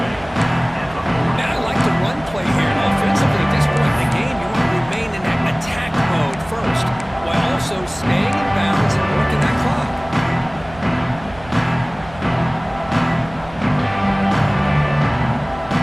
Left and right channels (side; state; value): right; noise; rumble, 19 dB below the sound